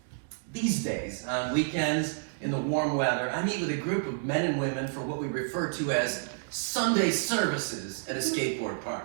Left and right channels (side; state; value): left; silent; digital silence